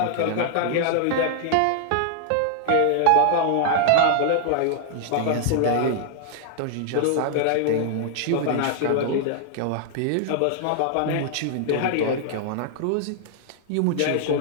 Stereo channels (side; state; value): both; different; correlation 0.00